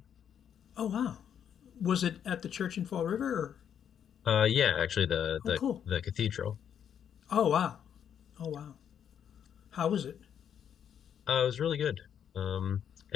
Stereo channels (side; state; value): right; quieter; 8.7 dB